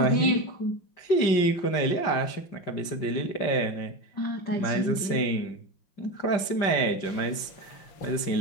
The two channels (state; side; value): late; right; 5.1 ms